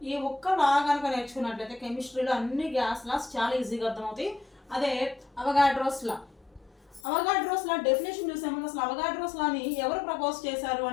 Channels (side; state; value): right; drops out; at 7.0 s